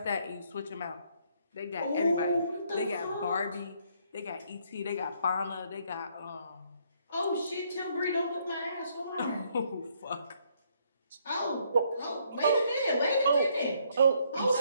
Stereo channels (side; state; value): both; inverted; correlation -0.69